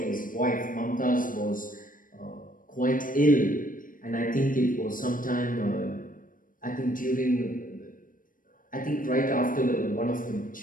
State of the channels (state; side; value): late; right; 0.40 ms